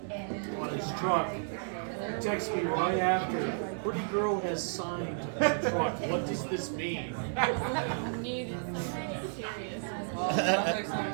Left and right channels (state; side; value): silent; left; 56 dB below the other